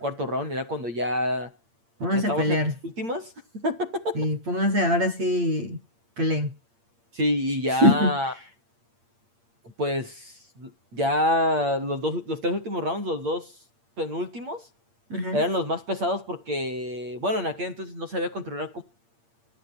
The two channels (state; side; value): late; left; 8.6 ms